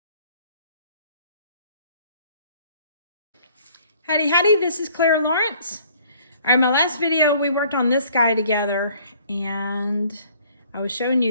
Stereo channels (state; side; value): inverted; both; correlation -0.58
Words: Howdy Howdy, this is Clara Lawrence. All right, my last video we worked on this guy together and I was showing